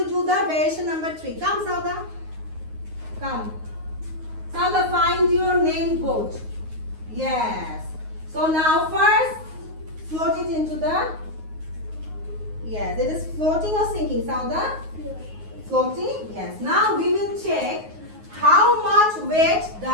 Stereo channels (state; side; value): late; left; 9.5 ms